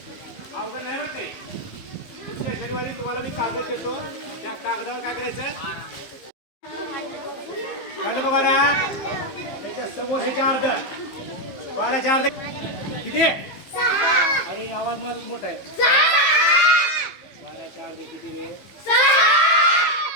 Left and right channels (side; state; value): right; late; 15 ms